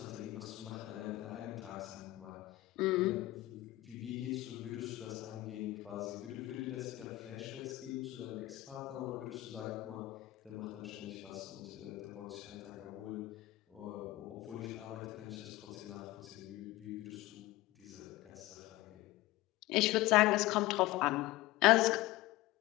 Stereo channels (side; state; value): right; quieter; 17.8 dB